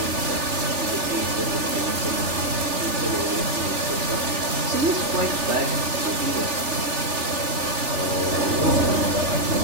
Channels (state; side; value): late; left; 3.4 ms